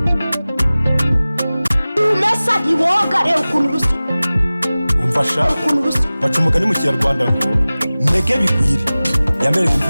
ukuntu rusa umfasha baca umugani mu kinyarwanda ngo ntege bigwire yamereye imvi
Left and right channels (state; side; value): inverted; both; correlation -0.98